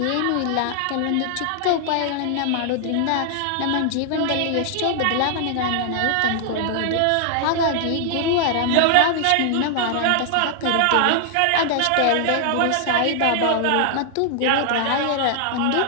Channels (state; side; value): different; both; correlation 0.00